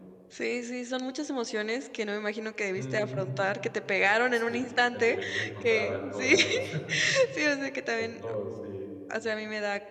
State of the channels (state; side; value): identical; both; correlation 1.00